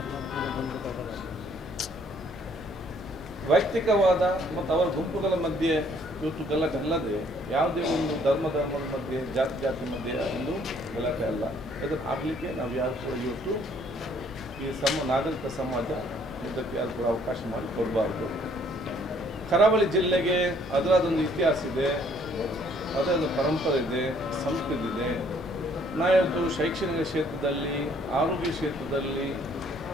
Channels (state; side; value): normal; both; correlation 0.63